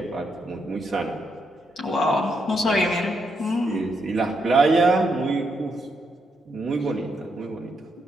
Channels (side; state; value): both; normal; correlation 0.79